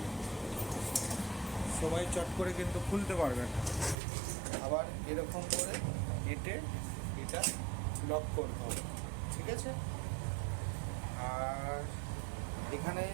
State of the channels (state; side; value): drops out; left; at 4.0 s